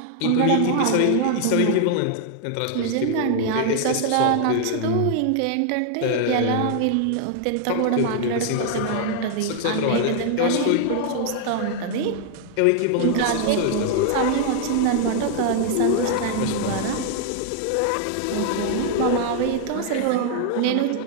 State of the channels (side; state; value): both; different; correlation 0.00